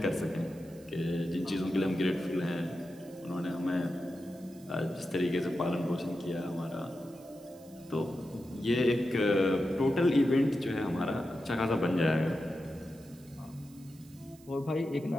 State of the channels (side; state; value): right; noise; hiss, 25 dB below the sound